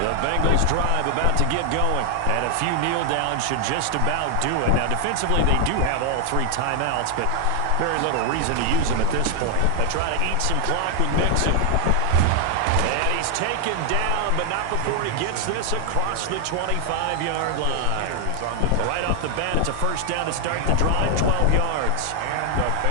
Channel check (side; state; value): both; different; correlation 0.00